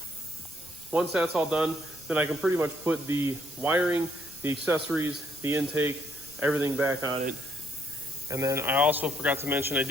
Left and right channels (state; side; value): noise; right; rumble, 23 dB below the sound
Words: Once that's all done, then I can pretty much put the wiring, the accessories, the intake, everything back on it. And then I also forgot to mention I